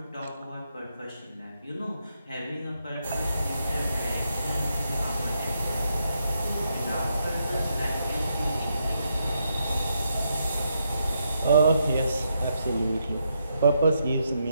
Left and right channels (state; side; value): inverted; both; correlation -0.80